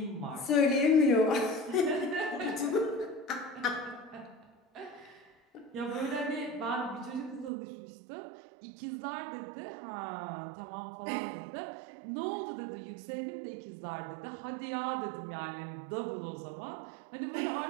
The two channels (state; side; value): drops out; left; at 7.5 s